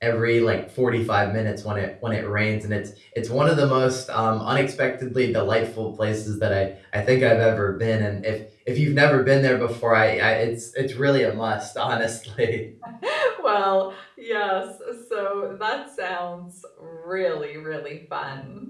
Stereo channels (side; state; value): both; identical; correlation 1.00